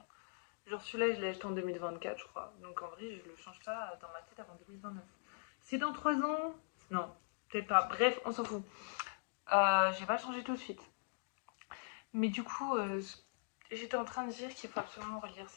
Genre, celui-là, je l'ai acheté en 2024, je crois. Donc, en vrai, je le change pas dans ma tête avant 2029. C'est dans 3 ans? Non, peut-être pas. Bref, on s'en fout. Je vais pas le changer tout de suite. Mais du coup, j'étais en train de dire qu'il faut absolument relire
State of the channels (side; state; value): right; silent; digital silence